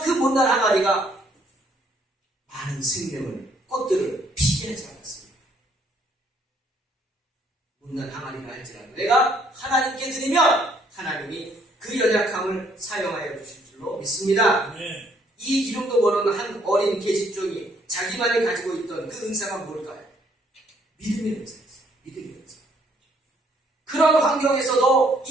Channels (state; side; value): normal; both; correlation 0.66